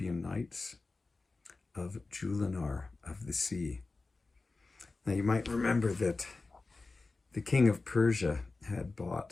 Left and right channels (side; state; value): right; quieter; 3.7 dB